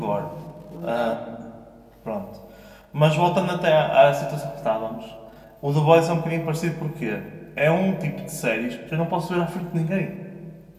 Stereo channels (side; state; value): both; identical; correlation 1.00